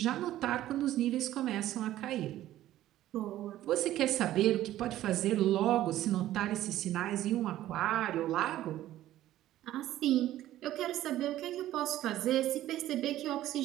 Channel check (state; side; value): quieter; left; 13.8 dB